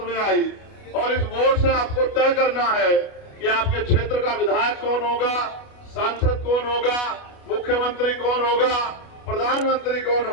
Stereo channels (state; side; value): late; right; 29 ms